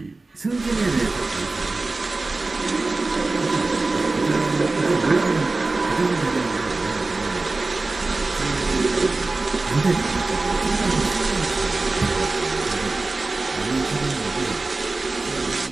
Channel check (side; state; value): left; quieter; 3.4 dB